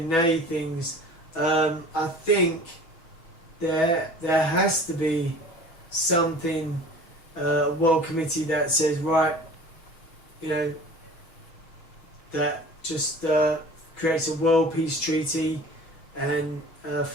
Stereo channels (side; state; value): right; late; 6.1 ms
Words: nay things, I think there has to be something, a world committee that says, right, you know, that just creates a world peace treaty and a